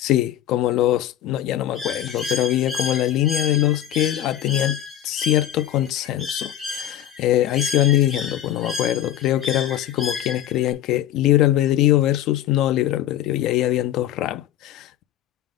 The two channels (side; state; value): right; quieter; 11.7 dB